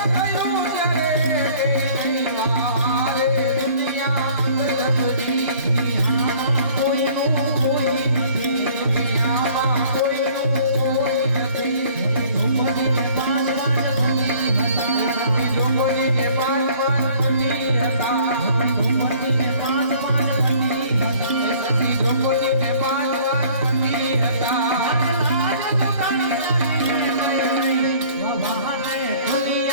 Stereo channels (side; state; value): both; inverted; correlation -0.54